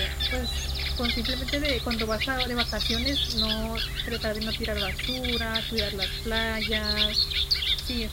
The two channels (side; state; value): both; identical; correlation 1.00